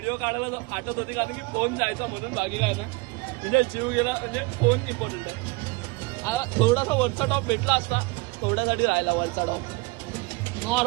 काढायला फाटत होती कारण की फोन जायचा म्हणून. बाकी काय ना म्हणजे जीव गेला म्हणजे फोन इम्पॉर्टंट आहे. आता थोडासा वरचा टॉप भेटला असता. थोड्यासाठी राहिला वरचा टॉप.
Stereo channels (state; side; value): quieter; left; 26.0 dB